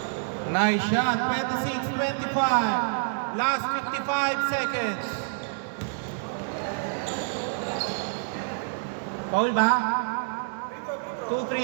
Nice shot. 26-25. Last 55 seconds. Foul ba? 2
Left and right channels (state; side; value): silent; left; digital silence